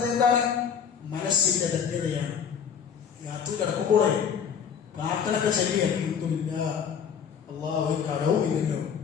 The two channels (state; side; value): quieter; right; 7.4 dB